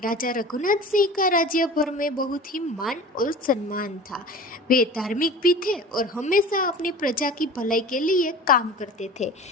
रघुनाथ सिंह का राज्य भर में बहुत ही मान और सम्मान था। वे धार्मिक भी थे और हमेशा अपनी प्रजा की भलाई के लिए काम करते थे।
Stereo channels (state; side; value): normal; both; correlation 0.38